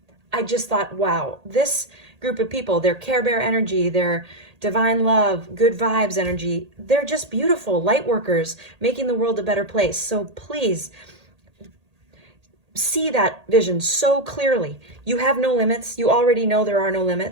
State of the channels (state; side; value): late; left; 1.8 ms